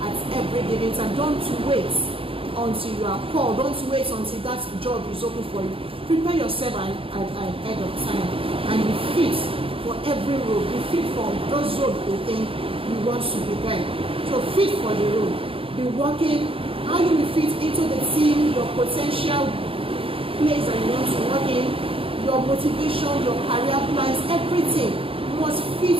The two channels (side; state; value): left; late; 0.27 ms